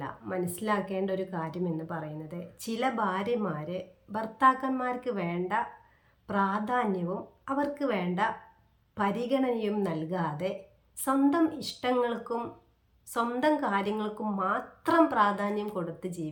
മനസ്സിലാക്കേണ്ട ഒരു കാര്യം എന്ന് പറയുന്നത്, ചില ഭാര്യമാര് ഭർത്താക്കന്മാർക്ക് വേണ്ട പ്രാധാന്യവും അവർക്ക് വേണ്ട പരിഗണനയും നൽകാതെ സ്വന്തം ഇഷ്ടങ്ങൾക്കും സ്വന്തം കാര്യങ്ങൾക്കും മാത്രം പ്രാധാന്യം കൊടുത്ത്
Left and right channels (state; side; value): identical; both; correlation 1.00